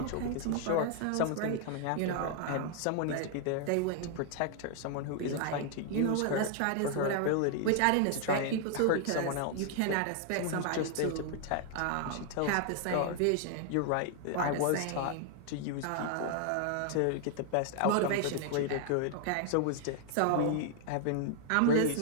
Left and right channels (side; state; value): both; different; correlation 0.00